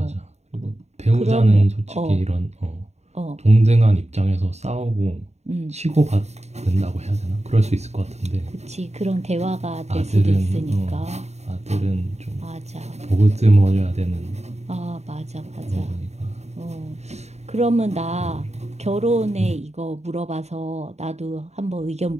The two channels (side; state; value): left; late; 0.32 ms